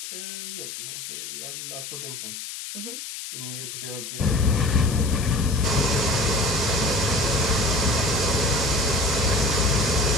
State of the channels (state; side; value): noise; left; hiss, 9 dB below the sound